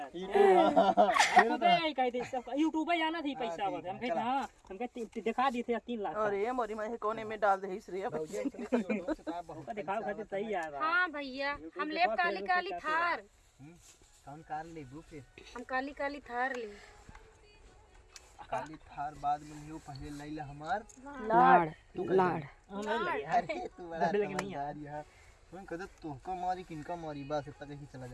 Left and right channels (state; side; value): identical; both; correlation 1.00